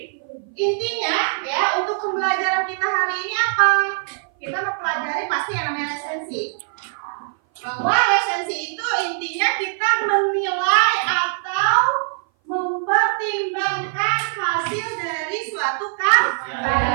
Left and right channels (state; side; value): silent; left; 58 dB below the other